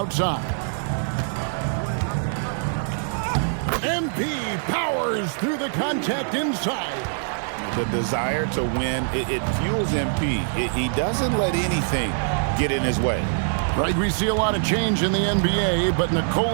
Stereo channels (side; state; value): left; silent; 63 dB below the other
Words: MP powers through the contact inside. The desire to win, it fuels MP. He doesn't let anything get in his way. Right, we see a lot of change in the NBA, but